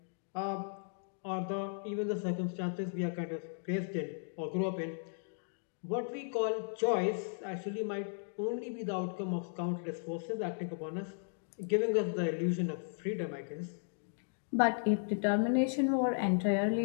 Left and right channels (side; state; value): right; silent; digital silence